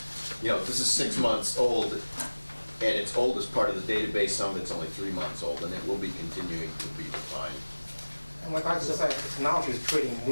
6 months old, and it's old as part of the database. Some of it's only 3 months old, and it will be continuing to be refined. And like I just said, the technology is creating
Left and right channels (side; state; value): both; inverted; correlation -1.00